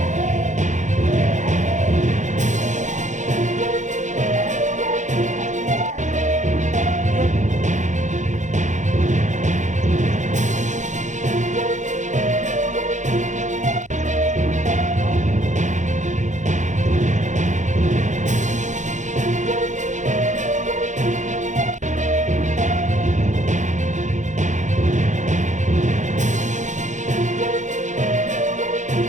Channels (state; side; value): late; left; 0.35 ms